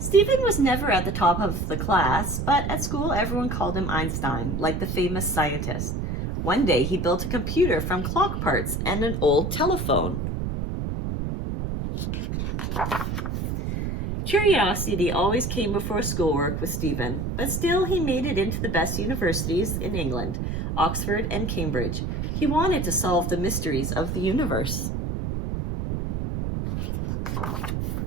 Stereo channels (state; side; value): noise; right; rumble, 2 dB below the sound